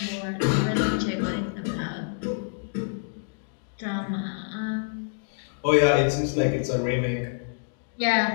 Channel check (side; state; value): right; silent; digital silence